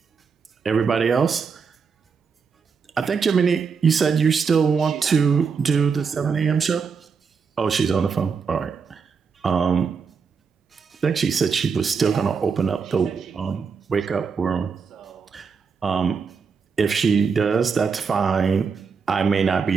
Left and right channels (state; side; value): quieter; left; 5.7 dB